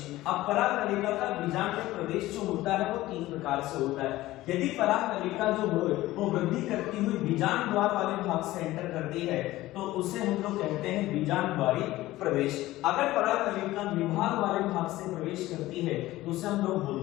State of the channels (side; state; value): right; quieter; 16.9 dB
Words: अब पराग नलिका का बीजांड में प्रवेश जो होता है वो 3 प्रकार से होता है। यदि पराग नलिका जो हो वो वृद्धि करती हुई बीजांड द्वार वाले भाग से एंटर करती है तो उसे हम लोग कहते हैं बीजांड द्वारी प्रवेश। अगर पराग नलिका निभाग वाले भाग से प्रवेश करती है तो उसे हम लोग